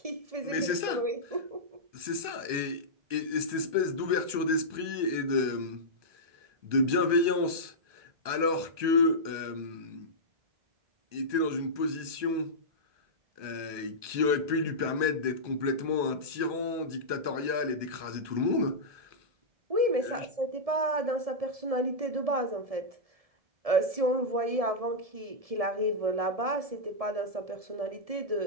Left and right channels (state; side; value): late; left; 1.2 ms